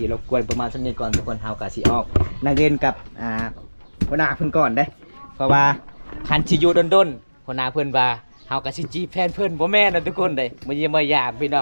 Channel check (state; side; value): inverted; both; correlation -1.00